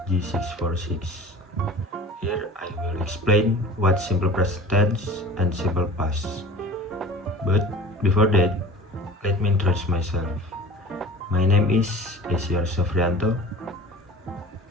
G646. Here I will explain what simple present tense and simple past. But before that, let me introduce myself. My name is Esyar Sofrianto.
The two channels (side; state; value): both; normal; correlation 0.40